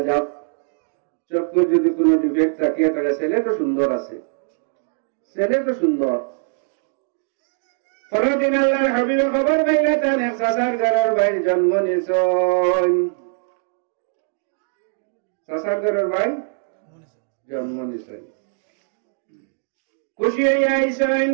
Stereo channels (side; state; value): left; silent; digital silence